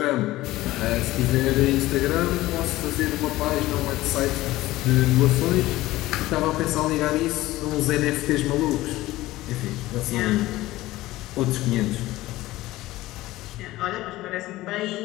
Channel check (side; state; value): right; quieter; 17.3 dB